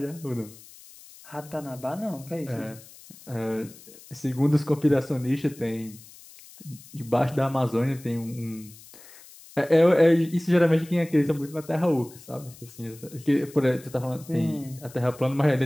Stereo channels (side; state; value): left; noise; hiss, 21 dB below the sound